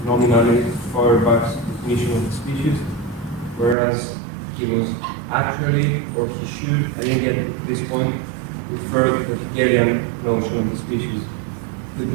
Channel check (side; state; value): left; drops out; at 3.8 s